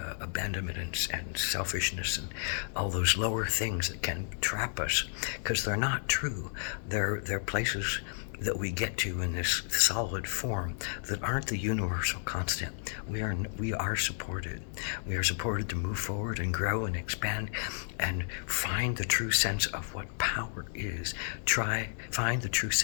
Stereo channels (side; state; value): right; silent; digital silence